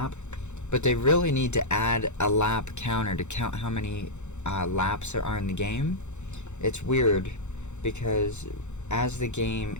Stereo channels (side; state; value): right; late; 0.83 ms